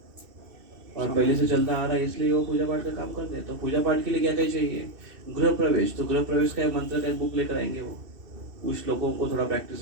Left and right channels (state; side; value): late; left; 2.6 ms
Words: और पहले से चलता आ रहा है, इसलिए वो पूजा पाठ का काम करते हैं। तो पूजा पाठ के लिए क्या क्या चाहिए? गृह प्रवेश। तो गृह प्रवेश का मंत्र का बुक लेकर आएंगे, वो उस लोगों को थोड़ा